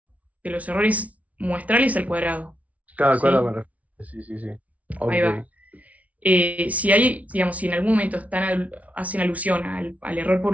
errores muestrales al cuadrado. Cada ¿Sí? cuadro me refiero. Sí, sí, sí. Ahí Ok. va. Si en algún momento hacen alusión al error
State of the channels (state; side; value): late; left; 0.068 ms